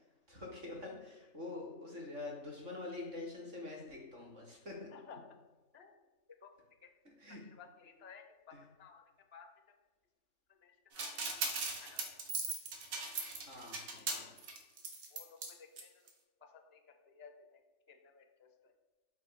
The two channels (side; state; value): left; late; 3.4 ms